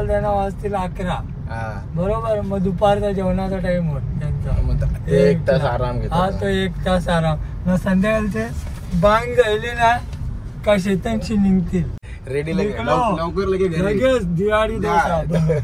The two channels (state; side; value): identical; both; correlation 1.00